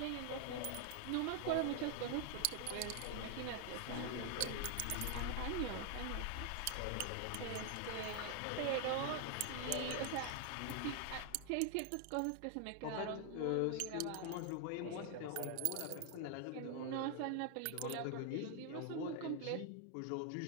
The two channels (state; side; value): different; both; correlation 0.00